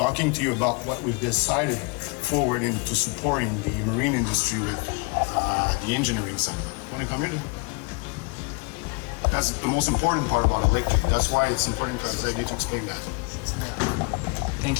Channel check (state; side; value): quieter; right; 31.1 dB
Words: to you about what we've decided forward into supporting the marine industry with the engineering side. Can we come here? That's the most important part about electric. That's why it's important for Xavier to explain that.